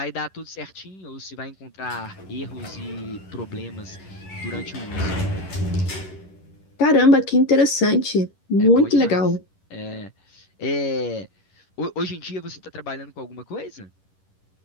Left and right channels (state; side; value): late; right; 10 ms